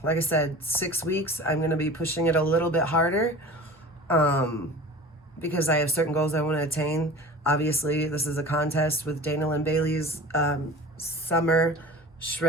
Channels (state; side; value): normal; both; correlation 0.38